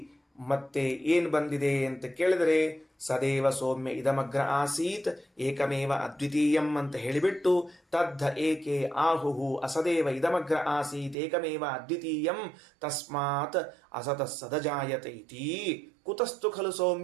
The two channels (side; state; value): left; drops out; at 11.2 s